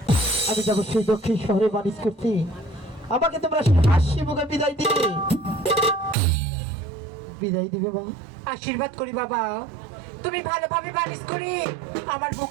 আমি যাবো সেই দক্ষিণ শহরে বাণিজ্য করতে, আমাকে তোমরা হাসি মুখে বিদায় দিবে, বিদায় দিবে মা। আশীর্বাদ করি বাবা, তুমি ভালোভাবে বানিস করে আমার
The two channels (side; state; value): left; drops out; at 6.2 s